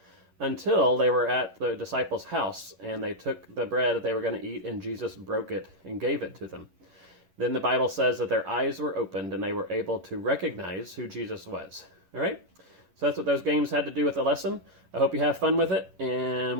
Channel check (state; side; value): late; left; 11 ms